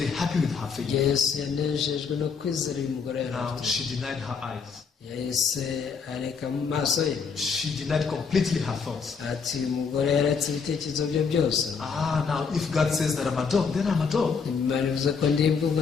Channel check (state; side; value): quieter; right; 5.7 dB